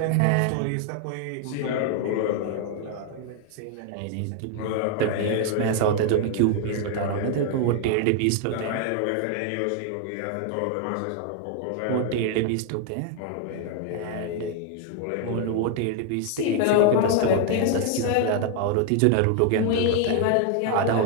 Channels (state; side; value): different; both; correlation 0.00